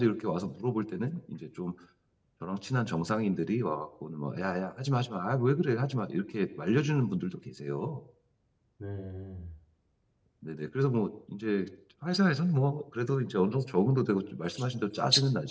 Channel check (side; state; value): both; identical; correlation 1.00